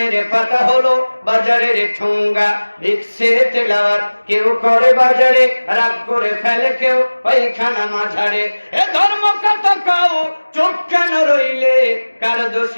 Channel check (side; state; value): both; inverted; correlation -1.00